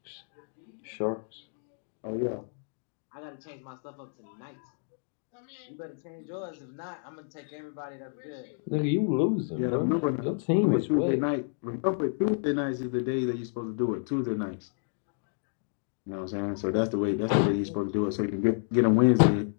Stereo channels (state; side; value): silent; right; digital silence